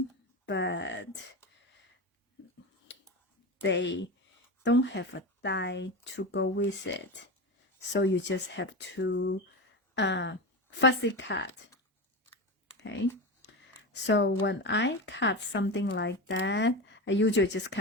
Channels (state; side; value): normal; both; correlation 0.22